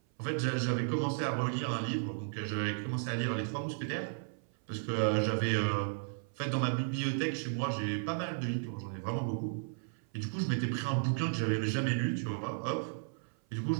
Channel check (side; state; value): left; silent; 55 dB below the other